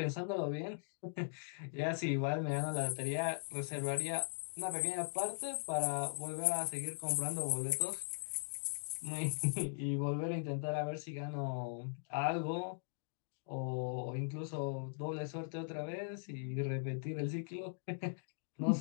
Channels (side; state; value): right; silent; digital silence